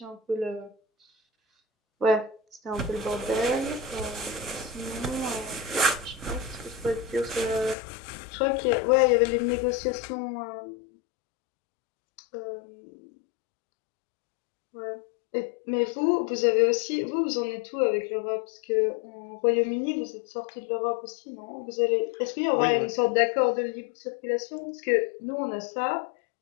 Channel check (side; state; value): right; drops out; at 7.8 s